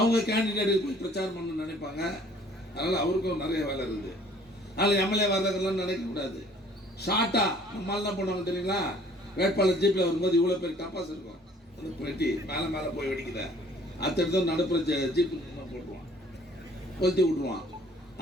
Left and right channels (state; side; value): normal; both; correlation 0.56